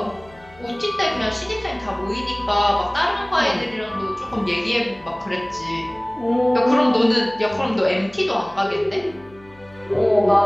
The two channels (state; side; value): noise; left; hum, 25 dB below the sound